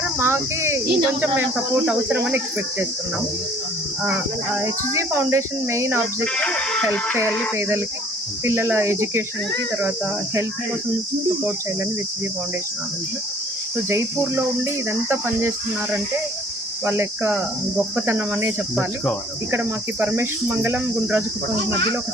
మాకి ఇంకొంచెం మేము సపోర్ట్ అవసరమని ఎక్స్పెక్ట్ చేస్తున్నాం. HG foundation main objective help చేయాలి పేదలకి, పిల్లల ఎడ్యుకేషన్కి, తర్వాత హెల్త్ కోసం సపోర్ట్ చేయాలని హెచ్జీ ఫౌండేషన్ ఆలోచన. సో జైపూర్లో ఉండి ఇదంతా పనిచేస్తున్నారంటే వాళ్ళ యొక్క గొప్పతనం అనే చెప్పాలి. ఇక్కడ మాకు పరమేశ్వర మంగళం గుండ్రాజుకుప్పం మధ్యలో ఒక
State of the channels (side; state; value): both; normal; correlation 0.55